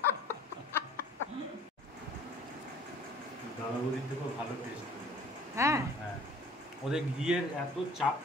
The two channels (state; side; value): normal; both; correlation 0.51